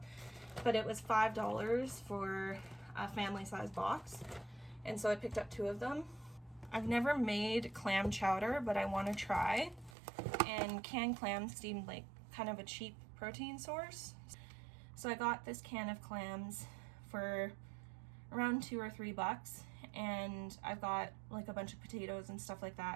But it was $5 for a family size box. And so I picked up 2 of them. I've never made clam chowder, but I want to try. And canned clams seemed like kind of a cheap protein source. So I got this can of clams for around $2 or $3, and I've got like a bunch of potatoes and stuff like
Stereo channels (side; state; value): left; drops out; at 10.0 s